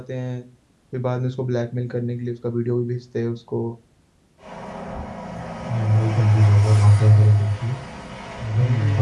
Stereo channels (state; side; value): identical; both; correlation 1.00